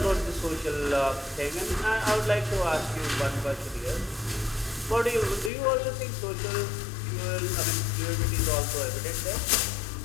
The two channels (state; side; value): drops out; right; at 5.5 s